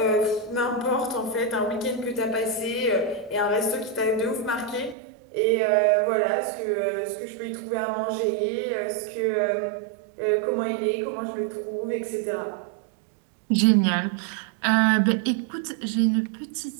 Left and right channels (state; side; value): drops out; left; at 5.0 s